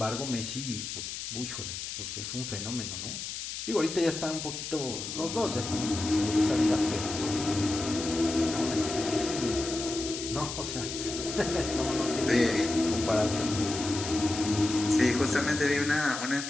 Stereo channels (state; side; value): noise; left; hiss, 6 dB below the sound